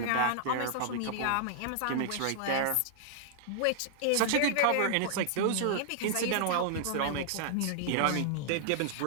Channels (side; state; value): both; different; correlation -0.01